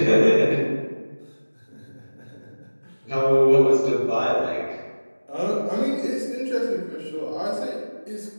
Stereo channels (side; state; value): both; inverted; correlation -1.00